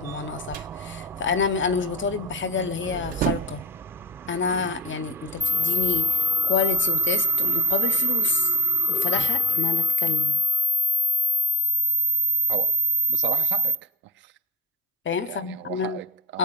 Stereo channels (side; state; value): both; normal; correlation 0.15